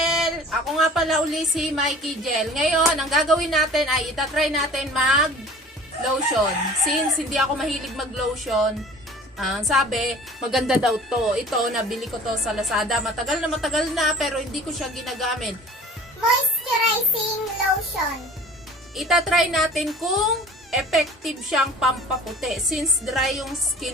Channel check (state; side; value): normal; both; correlation 0.45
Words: Ako nga pala uli si Mikey Gel. Ngayon, ang gagawin natin ay itatry natin mag-lotion. Since hindi ako mahilig mag-lotion, sabi, maganda daw to. Ito, nabili ko to sa Lazada. Matagal na pero hindi ko siya ginagamit. Moisturizing lotion. Itatry natin kung effective siyang pampaputi. Since dry yung